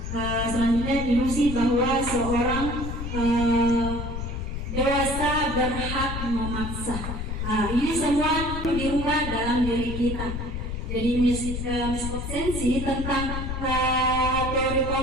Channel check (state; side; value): noise; left; rumble, 5 dB below the sound